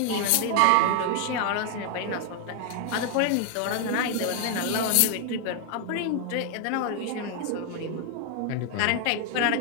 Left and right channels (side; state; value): both; different; correlation 0.00